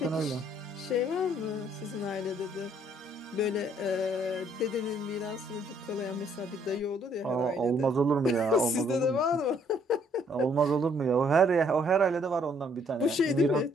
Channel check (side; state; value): both; normal; correlation 0.65